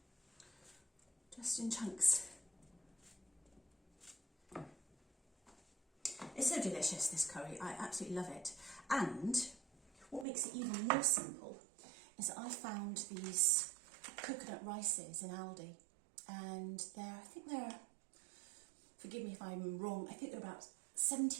Just in chunks. It's so delicious, this curry. I absolutely love it. And what makes it even more simple is that I found these coconut rices in Aldi. And I think they're, forgive me if I'm wrong, I think they're about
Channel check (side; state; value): left; drops out; at 10.2 s